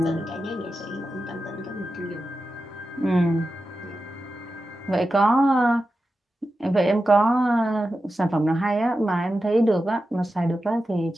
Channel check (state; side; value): normal; both; correlation 0.91